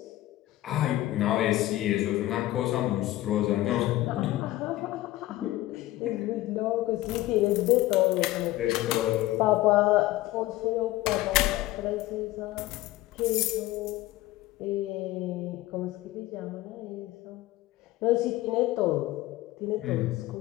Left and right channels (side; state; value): right; quieter; 16.5 dB